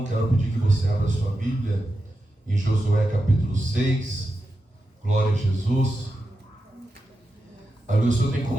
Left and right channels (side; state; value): both; normal; correlation 0.90